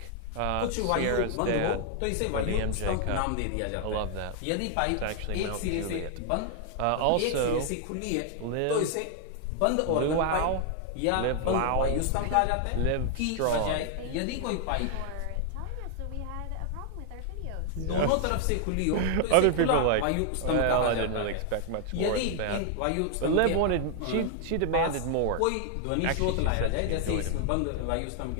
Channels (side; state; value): both; different; correlation 0.00